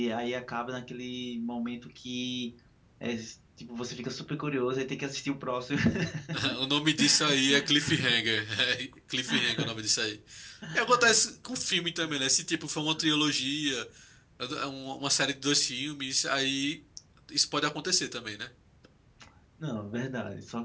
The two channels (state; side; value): identical; both; correlation 1.00